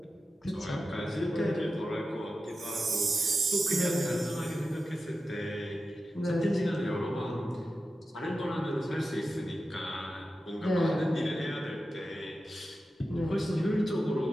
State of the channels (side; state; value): both; normal; correlation 0.92